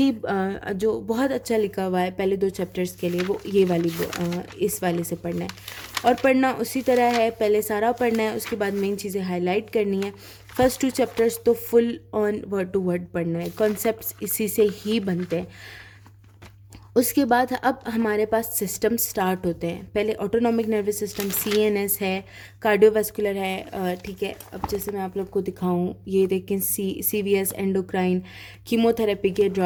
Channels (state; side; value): identical; both; correlation 1.00